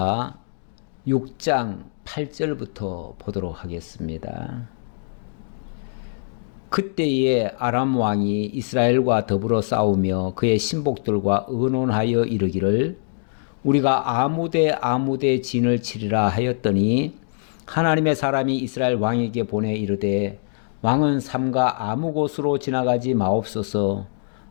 6장 8절부터 보도록 하겠습니다. 그때에 아람 왕이 이스라엘과 더불어 싸우며 그의 신복들과 의논하여 이르기를 우리가 아무데 진을 치리라 하였더니 하나님의 사람이 이스라엘 왕에게 보내 이르되 왕은 삼가 아무 곳으로 지나가지 마옵소서.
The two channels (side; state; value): right; silent; digital silence